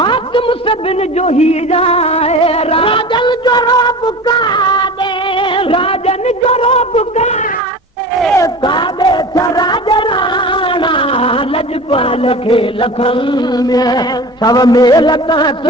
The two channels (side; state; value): both; normal; correlation 0.35